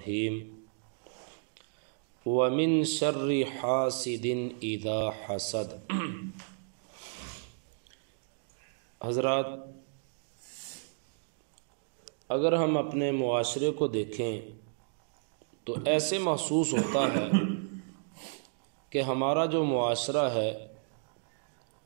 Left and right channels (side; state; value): left; silent; digital silence